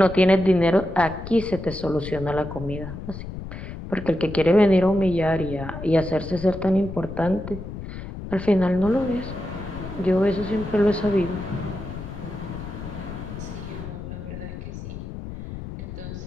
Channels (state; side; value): noise; left; rumble, 10 dB below the sound